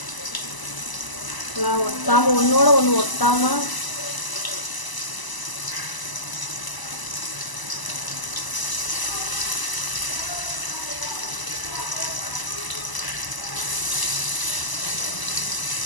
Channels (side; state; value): right; late; 1.0 ms